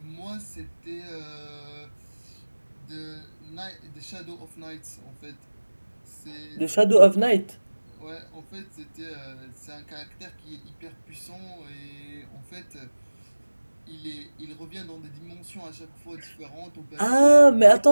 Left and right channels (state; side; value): inverted; both; correlation -1.00